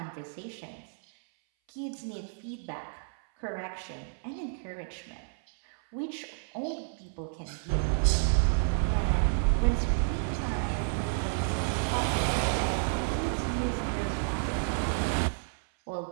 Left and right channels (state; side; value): silent; left; 57 dB below the other